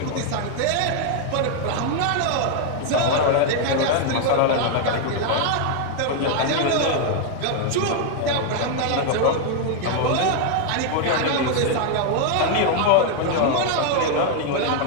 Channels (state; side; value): different; both; correlation 0.00